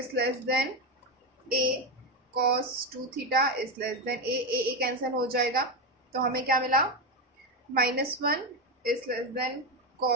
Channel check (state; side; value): normal; both; correlation 0.12